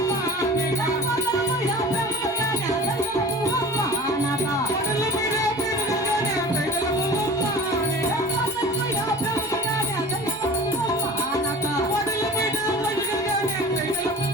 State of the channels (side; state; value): both; normal; correlation 0.39